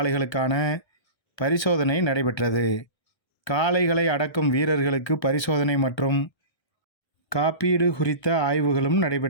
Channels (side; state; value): right; late; 1.3 ms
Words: பரிசோதனை நடைபெற்றது. காளைகளை அடக்கும் வீரர்களுக்கு பரிசோதனை மற்றும் காப்பீடு குறித்த ஆய்வுகளும்